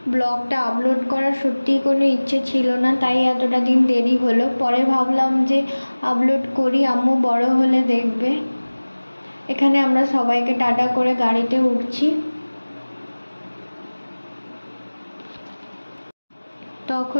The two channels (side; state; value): both; inverted; correlation -1.00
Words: ব্লগটা আপলোড করার সত্যিই কোনো ইচ্ছে ছিল না, তাই এতটা দিন দেরি হলো। পরে ভাবলাম যে আপলোড করি, আম্মু বড় হলে দেখবে। এখানে আমরা সবাইকে টাটা করে গাড়িতে উঠছি।